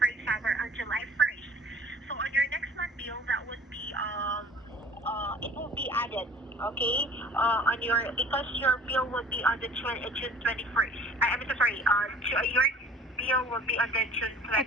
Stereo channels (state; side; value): normal; both; correlation 0.48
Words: example, on July 1st. So on your next month bill, that would be it will be added, okay? On your because your bill would be on the June 21st. I'm so sorry. Your bill will be on the June